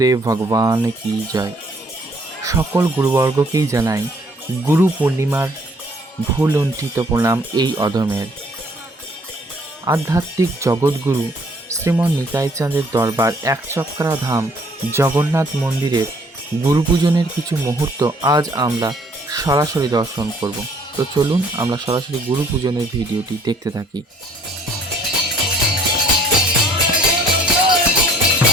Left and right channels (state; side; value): normal; both; correlation 0.60